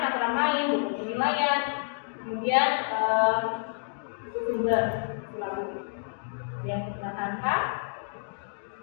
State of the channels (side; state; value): right; silent; digital silence